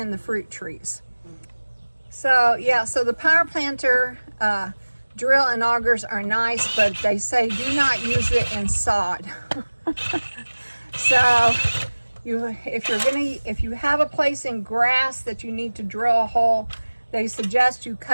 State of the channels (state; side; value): inverted; both; correlation -1.00